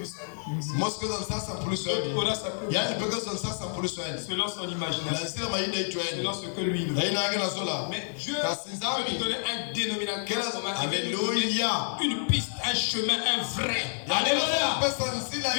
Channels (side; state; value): right; silent; digital silence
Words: salut. Aura sa preuve du salut. Selon son imagination. Selon ce que lui veut. Mais Dieu peut lui donner un dénominateur. Alléluia. Une piste, un chemin, un vrai. Alléluia.